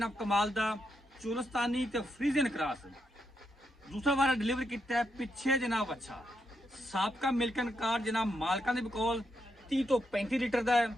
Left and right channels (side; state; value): both; normal; correlation 0.81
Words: कमाल का चुलस्तानी ते फ्रीजियन क्रॉस दूसरा बार डिलीवर किया है पिछे जनाब। अच्छा साबका मिल्कन कार्ड जनाब मालकां दे कोल 30 तो 35 लीटर का है।